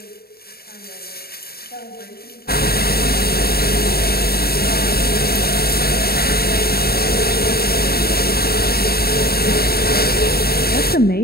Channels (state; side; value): late; right; 0.45 ms